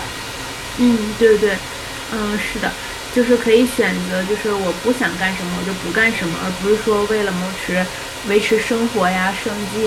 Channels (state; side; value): identical; both; correlation 1.00